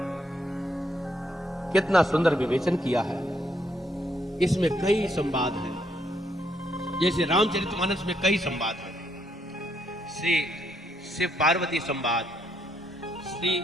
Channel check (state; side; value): normal; both; correlation 0.74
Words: कितना सुंदर विवेचन किया है। इसमें कई संवाद हैं, जैसे रामचरितमानस में कई संवाद हैं। श्री शिव पार्वती संवाद, श्री